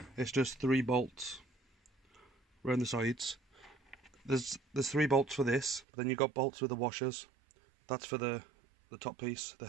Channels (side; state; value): left; drops out; at 5.9 s